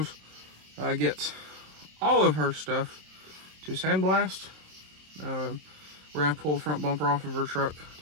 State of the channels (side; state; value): left; late; 27 ms